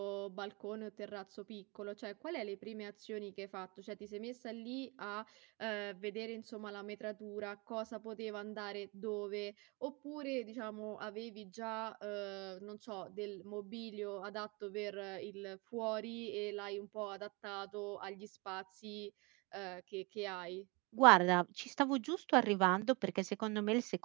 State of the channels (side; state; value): left; quieter; 28.2 dB